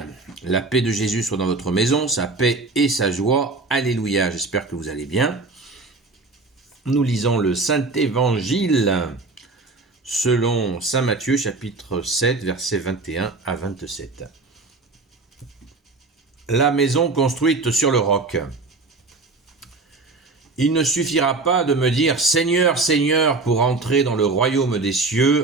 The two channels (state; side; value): quieter; left; 3.6 dB